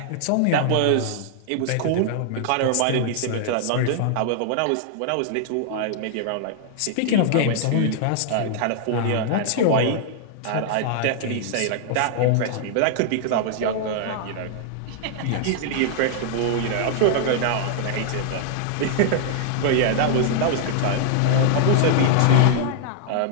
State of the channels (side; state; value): both; different; correlation -0.01